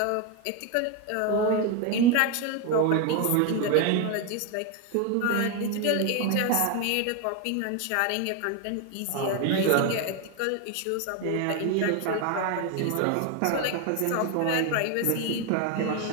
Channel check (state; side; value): different; both; correlation 0.02